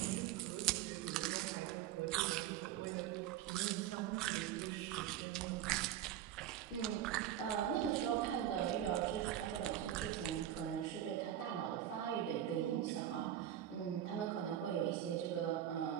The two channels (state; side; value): quieter; left; 11.4 dB